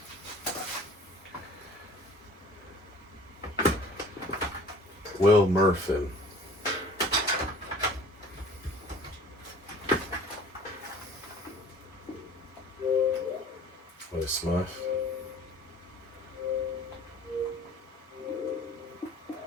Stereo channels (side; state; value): both; normal; correlation 0.48